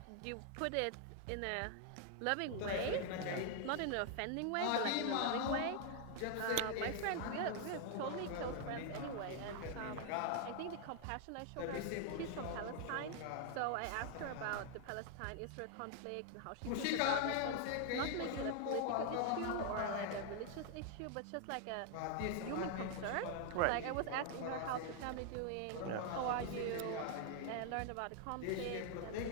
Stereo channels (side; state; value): both; different; correlation 0.00